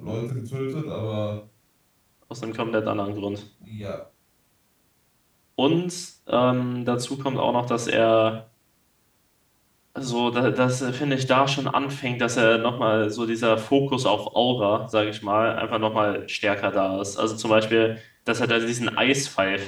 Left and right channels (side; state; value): both; identical; correlation 1.00